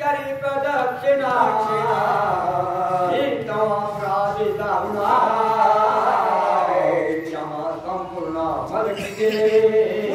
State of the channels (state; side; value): identical; both; correlation 1.00